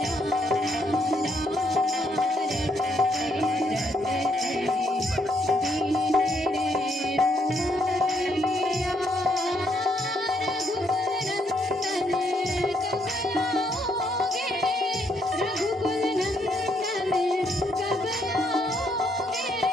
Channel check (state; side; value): normal; both; correlation 0.73